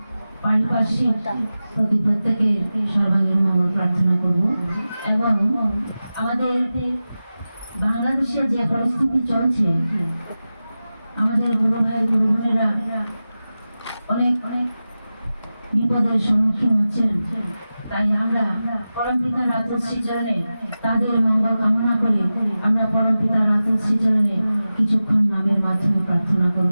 পারিপার্শ্বিক প্রতি প্রত্যেকে সর্বাঙ্গীন মঙ্গল প্রার্থনা করব। এবং আমাদের বাংলাদেশে যে পরিস্থিতি চলছে, আমাদের গুরু ভাই গুরু বোনেরা অনেক অনেক বিপদের সম্মুখীন হচ্ছেন। তাই আমরা পরম পিতার রাজশ্রী চরণে তাদের মঙ্গল কামনা করে আমরা পরম পিতার রাজশ্রী চরণে কিছুক্ষণ নামের মাধ্যমে প্রার্থনা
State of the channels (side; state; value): both; inverted; correlation -0.94